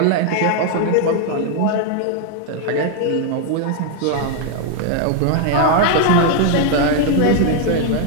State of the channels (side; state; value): both; different; correlation 0.00